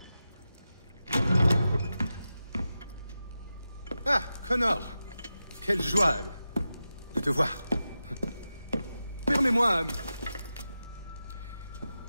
Ah, Connor! Quelle joie de te voir. Permets-moi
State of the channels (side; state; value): both; inverted; correlation -0.91